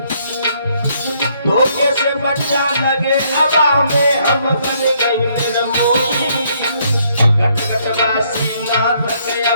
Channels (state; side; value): inverted; both; correlation -0.69